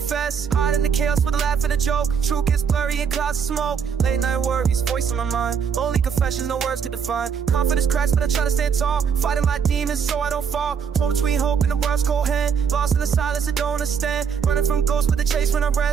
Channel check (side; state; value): left; quieter; 6.8 dB